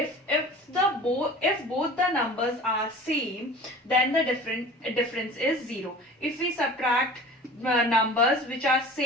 both the numbers are same, then the difference is 0. If we subtract numbers which are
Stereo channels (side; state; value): both; normal; correlation 0.41